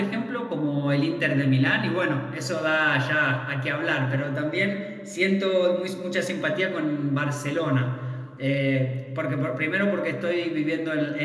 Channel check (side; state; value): both; identical; correlation 1.00